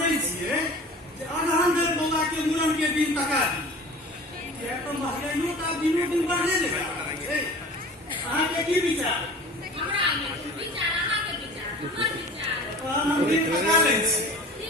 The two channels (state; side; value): normal; both; correlation 0.42